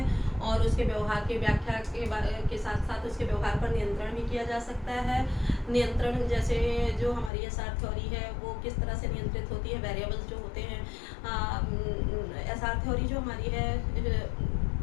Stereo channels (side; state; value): right; drops out; at 7.3 s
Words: और उसके व्यवहार की व्याख्या के साथ साथ उसके व्यवहार पर नियंत्रण भी किया जा सकता है। नियंत्रण जैसे जो हमारी एसआर थ्योरी है वो किस तरह से नियंत्रित होती है, वेरिएबल्स जो होते हैं। एसआर थ्योरी जो हमारी है